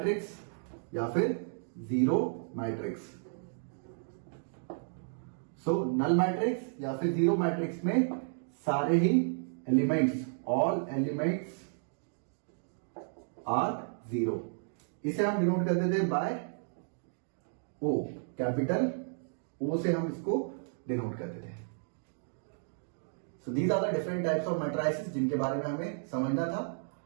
या फिर zero matrix. So null matrix या फिर zero matrix में सारे ही elements, all elements are zero. इसे हम डिनोट करते थे बाय O, कैपिटल O से हम इसको डिनोट करते थे. So these are the different types of matrices जिनके बारे में हमें समझना था.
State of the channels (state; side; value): silent; left; digital silence